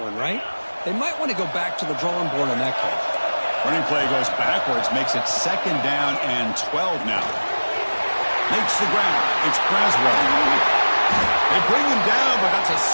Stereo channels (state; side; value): inverted; both; correlation -1.00